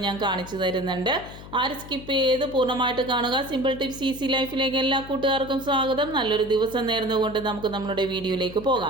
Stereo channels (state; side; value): noise; left; hum, 15 dB below the sound